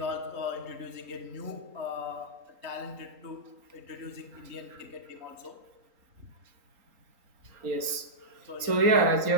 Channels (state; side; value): late; left; 3.9 ms